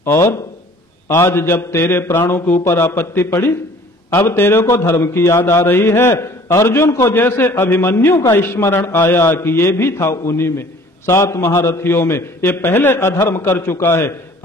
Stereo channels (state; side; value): normal; both; correlation 0.51